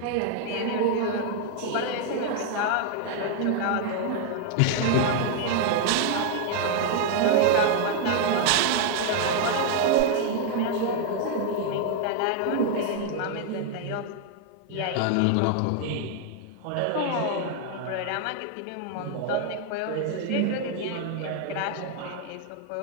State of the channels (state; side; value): different; both; correlation 0.00